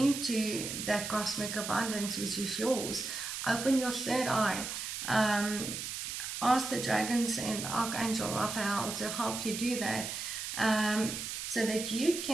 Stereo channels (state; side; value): noise; right; hiss, 5 dB below the sound